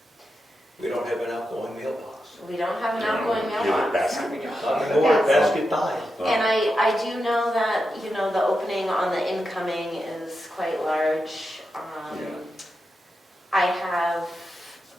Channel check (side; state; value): both; normal; correlation 0.88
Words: We don't have an outgoing mailbox. We don't have an Yeah, outgoing give it mailbox. basket. No, we don't. Not It's a anymore, basket. basket died. And I do know that, the opening on the incoming is quite large. Yeah. I have